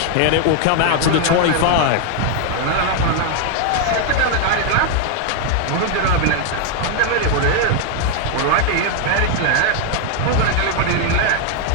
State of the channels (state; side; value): different; both; correlation 0.00